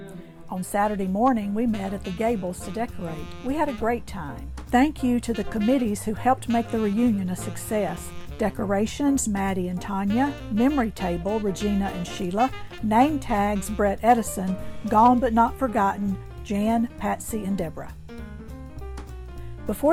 On Saturday morning, we met at the Gables to decorate. We had a great time. Thank you to the committees who helped make the reunion a success. Decorations, Maddie and Tanya. Memory table, Regina and Sheila. Name tags, Brett Edison. Gone but not forgotten, Jan, Patsy, and Deborah.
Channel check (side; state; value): both; identical; correlation 1.00